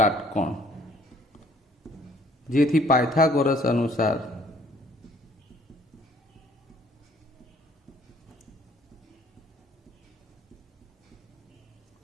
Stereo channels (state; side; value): normal; both; correlation 0.59